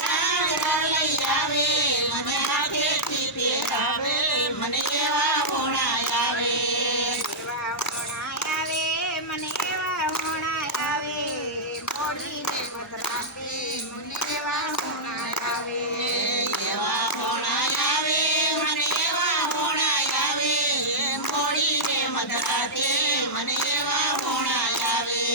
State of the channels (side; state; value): both; normal; correlation -0.09